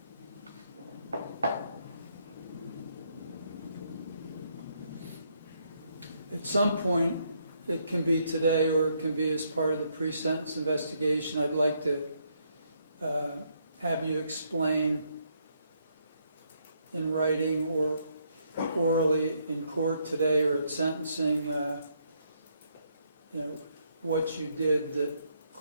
At some point, it can be today or it can be as part of the pre-sentence investigation, I'd like to have you explain in writing or orally in court today or at sentencing, what you did that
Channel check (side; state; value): both; inverted; correlation -0.73